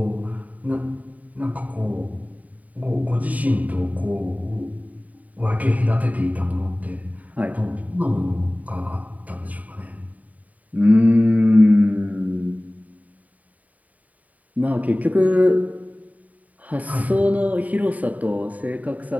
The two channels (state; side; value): late; left; 0.072 ms